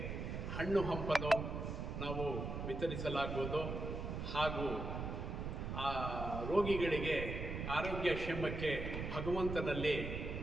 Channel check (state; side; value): noise; right; rumble, 4 dB below the sound